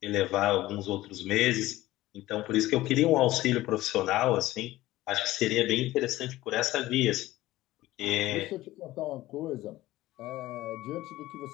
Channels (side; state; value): right; quieter; 16.7 dB